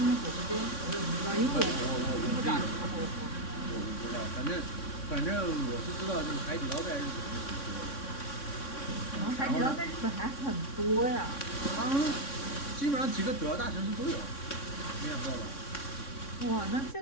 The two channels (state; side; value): late; right; 3.6 ms